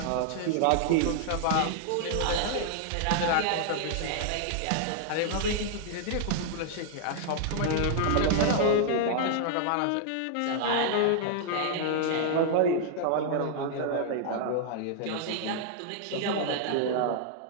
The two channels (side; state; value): both; different; correlation 0.00